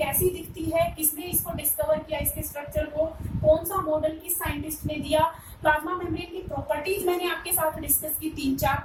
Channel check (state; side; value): identical; both; correlation 1.00